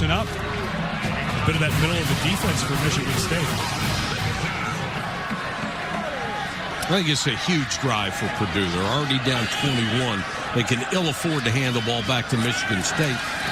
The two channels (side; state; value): both; identical; correlation 1.00